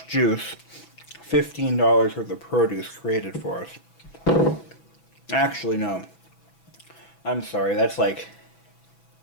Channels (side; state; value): right; late; 6.0 ms